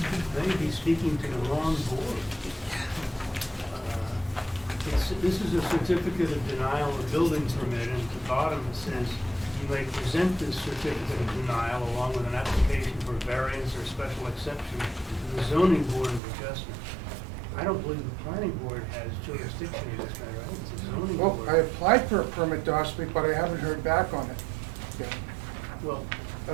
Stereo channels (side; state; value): left; drops out; at 16.2 s